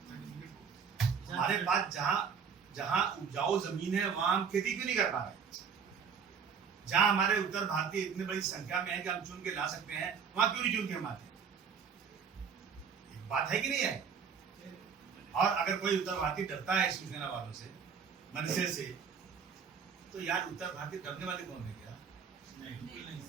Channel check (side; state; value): left; quieter; 6.6 dB